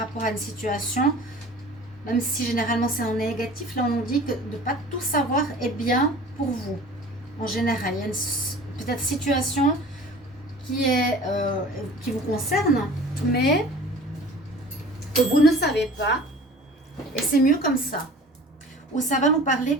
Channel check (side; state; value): both; normal; correlation 0.43